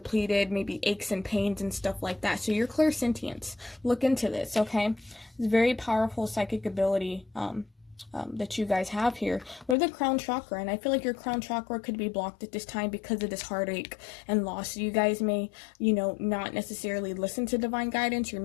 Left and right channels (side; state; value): right; drops out; at 9.8 s